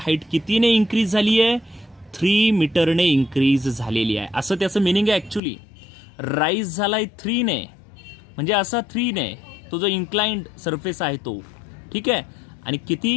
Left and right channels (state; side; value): drops out; right; at 5.4 s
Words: हाईट कितीने इन्क्रीज झाली आहे, 3 मीटरने इन्क्रीज झालेली आहे. असं त्याचं मिनिंग आहे. ॲक्च्युली राईज झालाय 3 ने, म्हणजे असा 3 ने तो जो इन्क्लाइंड सरफेस आहे तो, ठीक आहे, आणि